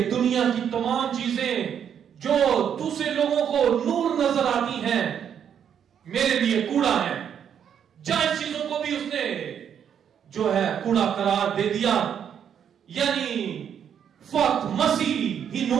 دنیا کی تمام چیزیں جو دوسرے لوگوں کو نور نظر آتی ہیں میرے لیے کوڑا ہے. جائز چیزوں کو بھی اس نے جو ہے کوڑا قرار دے دیا. یعنی فقط مسیح ہی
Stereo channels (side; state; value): left; quieter; 8.5 dB